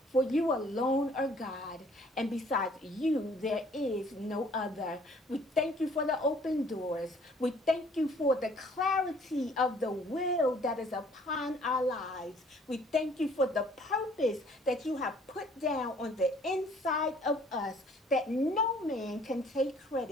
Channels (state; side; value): normal; both; correlation 0.58